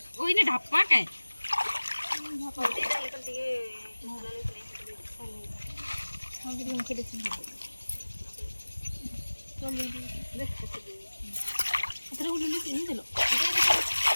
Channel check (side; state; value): both; inverted; correlation -1.00